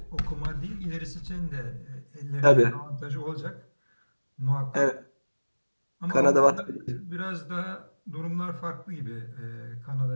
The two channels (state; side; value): inverted; both; correlation -1.00